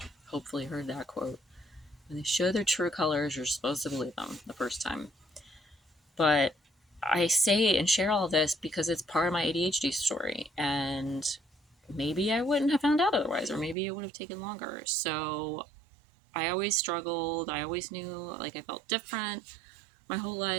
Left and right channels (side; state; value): left; drops out; at 13.8 s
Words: hopefully heard that quote. When they show their true colors, you're supposed to believe them the first time. But I say and share all this because it's part of my ADHD story, and maybe I wouldn't have found out otherwise, or maybe it would have taken longer. So I always struggled. I always knew like I felt different my whole